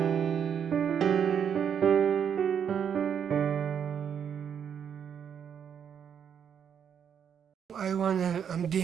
I want to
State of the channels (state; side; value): quieter; left; 8.0 dB